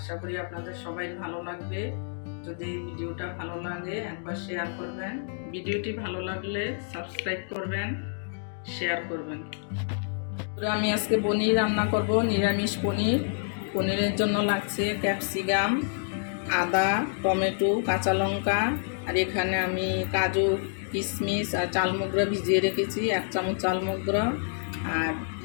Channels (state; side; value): silent; right; digital silence